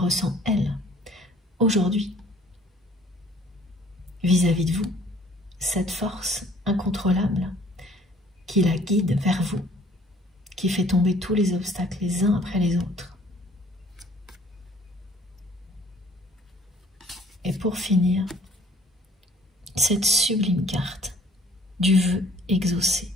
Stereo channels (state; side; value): normal; both; correlation 0.57